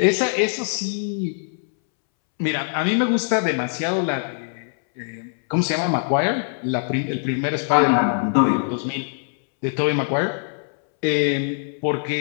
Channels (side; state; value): right; silent; 64 dB below the other